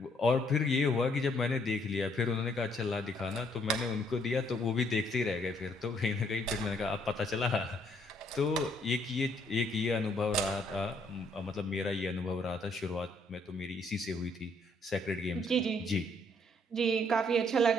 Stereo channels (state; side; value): normal; both; correlation 0.67